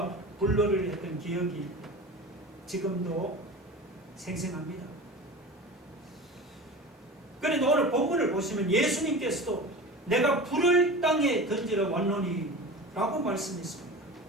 불놀이를 했던 기억이 지금도 생생합니다. 그런데 오늘 본문을 보시면 예수님께서도 내가 불을 땅에 던지러 왔노니 라고 말씀했습니다.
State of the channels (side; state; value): both; normal; correlation 0.33